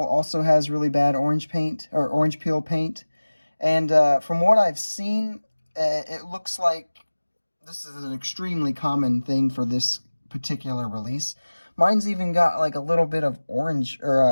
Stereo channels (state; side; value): inverted; both; correlation -1.00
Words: also has really bad orange paint, or orange peel paint. And from what I've seen, it looks like this is an extremely common thing for this particular release. Mine's even got like a little bit of orange